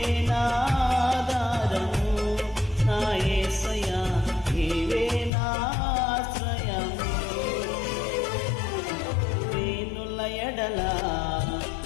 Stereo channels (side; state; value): right; drops out; at 5.3 s